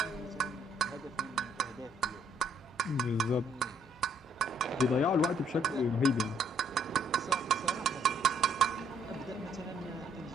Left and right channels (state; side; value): normal; both; correlation 0.67